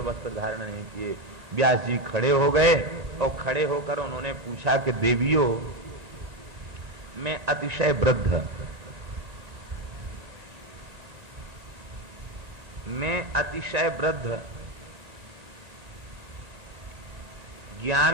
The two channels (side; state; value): left; late; 1.9 ms